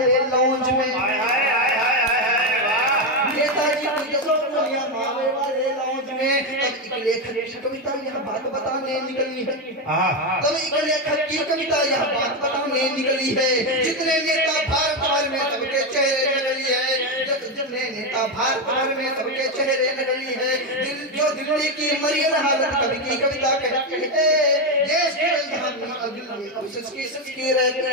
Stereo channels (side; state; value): both; normal; correlation 0.09